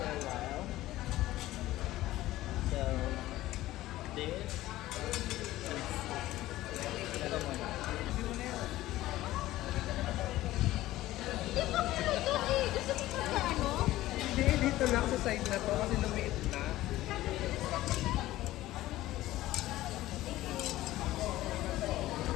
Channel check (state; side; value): quieter; right; 15.9 dB